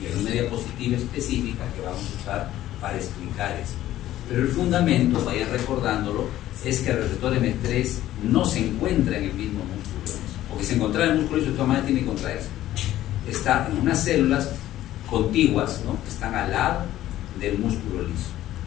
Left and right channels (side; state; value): right; quieter; 13.8 dB